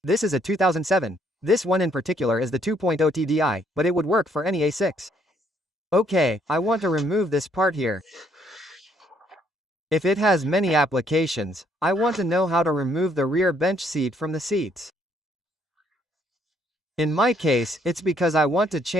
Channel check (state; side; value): normal; both; correlation 0.68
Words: This is a 2007. This one in particular is the 2.0 TDI, but it would work for any A6. Okay, I want to remove this part here. If it has many applications, I want to know how to remove the rear bench seat from the seats. In my case, it's because I want to